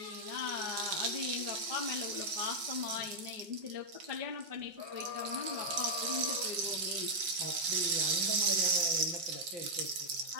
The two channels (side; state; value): left; late; 5.5 ms